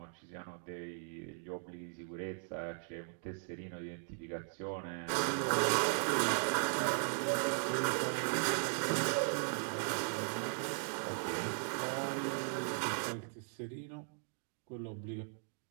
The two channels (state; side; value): silent; left; 52 dB below the other